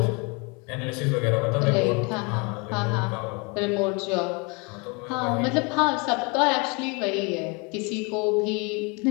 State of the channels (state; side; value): quieter; right; 30.7 dB